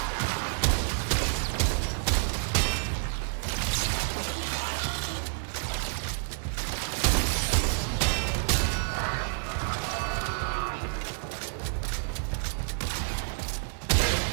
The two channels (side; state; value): left; silent; digital silence